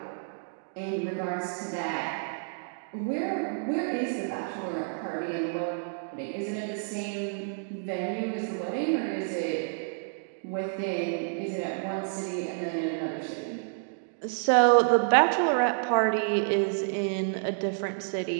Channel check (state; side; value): silent; left; digital silence